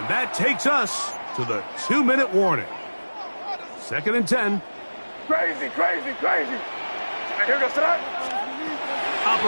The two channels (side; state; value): both; inverted; correlation -1.00